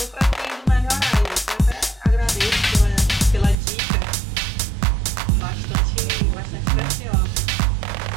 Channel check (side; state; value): left; drops out; at 3.6 s